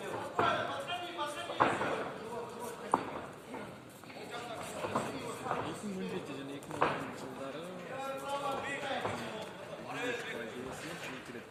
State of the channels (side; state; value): both; identical; correlation 1.00